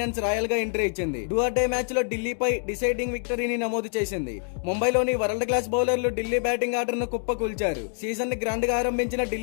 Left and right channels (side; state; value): right; silent; 61 dB below the other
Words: రాయల్ గా ఎంట్రీ ఇచ్చింది. డూ ఆర్ డే మ్యాచ్ లో ఢిల్లీపై డిసైడింగ్ విక్టరీని నమోదు చేసింది. ముంబైలోని world class bowler Delhi batting order ను కుప్పకూల్చారు. సీజన్ ని గ్రాండ్ గా ఆరంభించిన